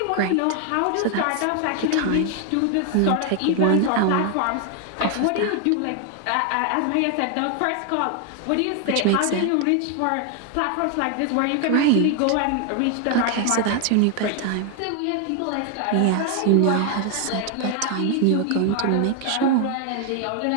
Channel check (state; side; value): different; both; correlation 0.00